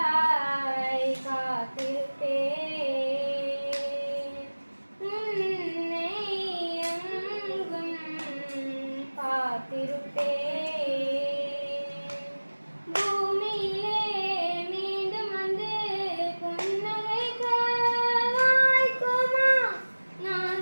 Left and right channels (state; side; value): inverted; both; correlation -1.00